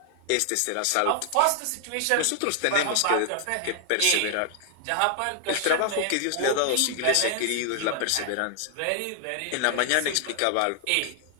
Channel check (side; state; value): both; different; correlation 0.00